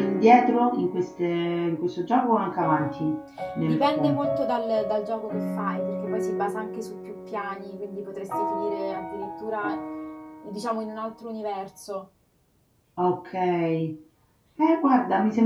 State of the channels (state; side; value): identical; both; correlation 1.00